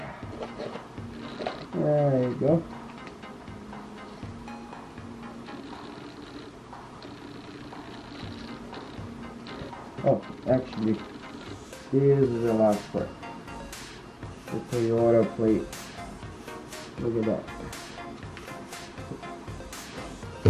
There you go. Oh, actually, this is the last part. The Toyota plate. Look at that.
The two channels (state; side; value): identical; both; correlation 1.00